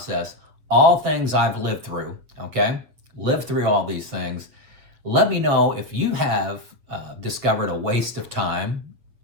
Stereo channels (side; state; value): left; late; 8.0 ms